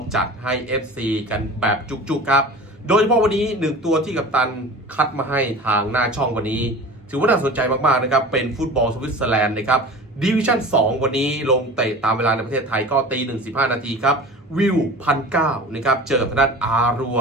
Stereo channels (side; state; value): both; normal; correlation 0.37